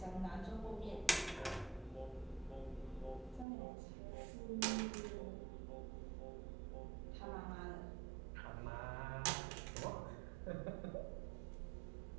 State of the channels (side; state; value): left; drops out; at 3.5 s